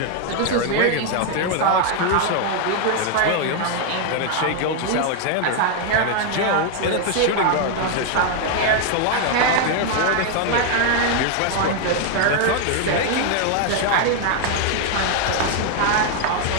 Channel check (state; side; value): different; both; correlation 0.01